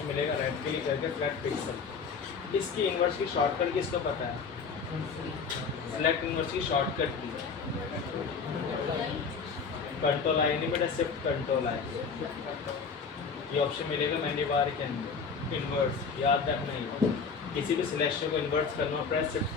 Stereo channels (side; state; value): right; quieter; 5.4 dB